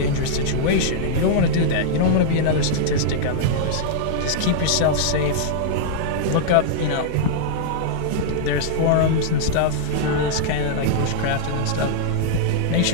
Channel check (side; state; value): both; different; correlation -0.02